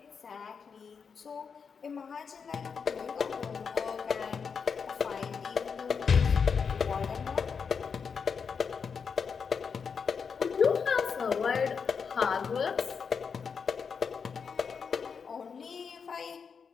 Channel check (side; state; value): right; quieter; 6.0 dB